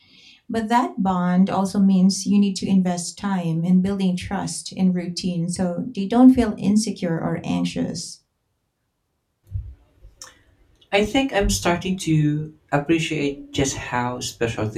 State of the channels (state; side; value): identical; both; correlation 1.00